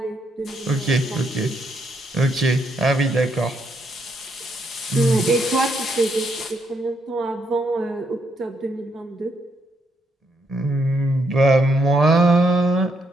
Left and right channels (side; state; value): both; normal; correlation 0.76